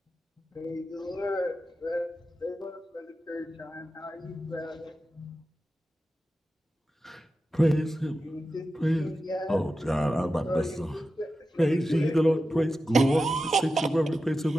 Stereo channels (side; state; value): both; normal; correlation 0.92